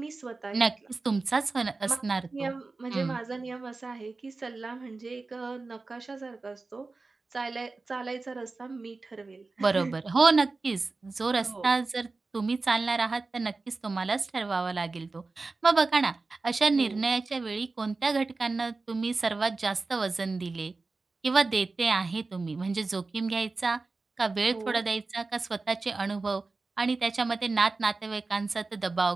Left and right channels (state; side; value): quieter; left; 3.7 dB